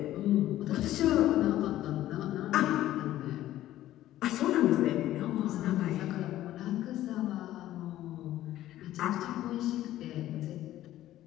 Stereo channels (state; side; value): quieter; right; 13.9 dB